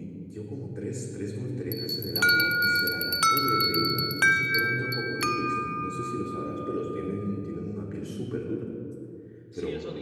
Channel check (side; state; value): both; identical; correlation 1.00